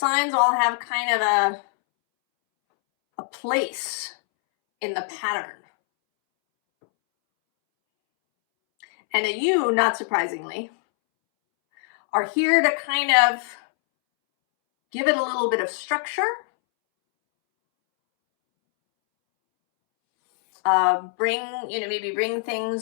all have kind of a place in the pattern. And that you, not surprisingly, are here to kind of give it a little bit of structure. Maybe bring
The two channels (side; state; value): right; silent; 63 dB below the other